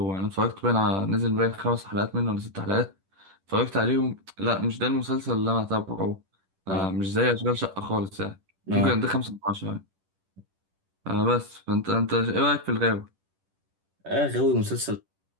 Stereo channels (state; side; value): late; left; 10 ms